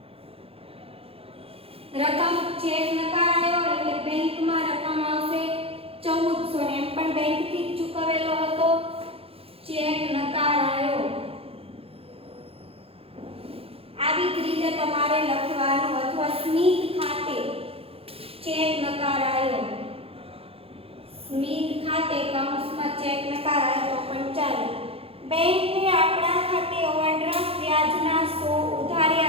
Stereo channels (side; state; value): left; late; 0.28 ms